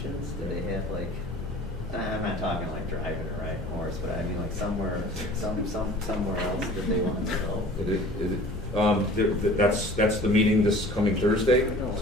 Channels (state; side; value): normal; both; correlation 0.46